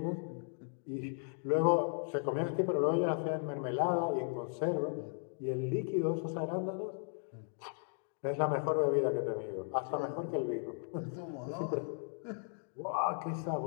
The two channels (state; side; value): silent; right; 54 dB below the other